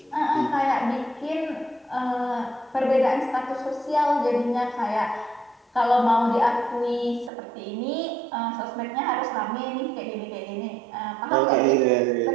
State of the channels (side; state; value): left; drops out; at 7.3 s